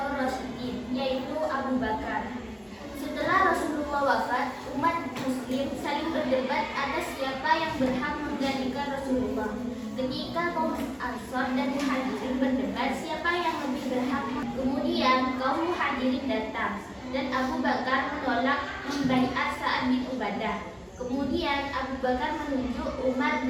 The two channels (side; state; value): both; identical; correlation 1.00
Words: Rasyidin, yaitu Abu Bakar. Setelah Rasulullah wafat, umat Muslim saling berdebat atas siapa yang berhak menggantikan Rasulullah. Ketika kaum Ansor dan Muhajirin berdebat siapa yang lebih berhak, kemudian kaum Muhajirin datang dan Abu Bakar menolak membaiat Sa'ad bin Ubadah. Kemudian Abu Bakar menunjuk Umar